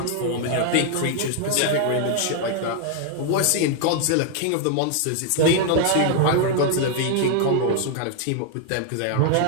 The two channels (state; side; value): different; both; correlation 0.00